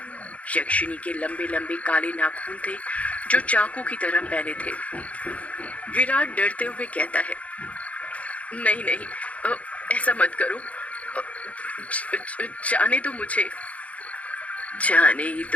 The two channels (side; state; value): right; late; 0.066 ms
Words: यक्षिनी के लंबे लंबे काले नाखून थे जो चाकू की तरह पहने थे। विराट डरते हुए कहता है, नहीं नहीं, ऐसा मत करो, जाने दो मुझे। जाने ही